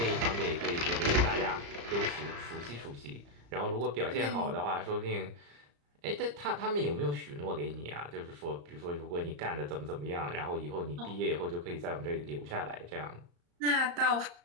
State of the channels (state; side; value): late; left; 35 ms